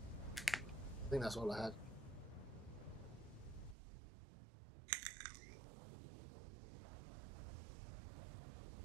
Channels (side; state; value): left; drops out; at 3.8 s